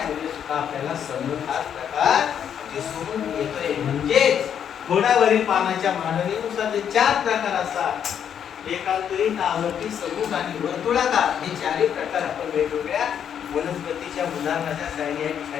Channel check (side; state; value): right; quieter; 8.6 dB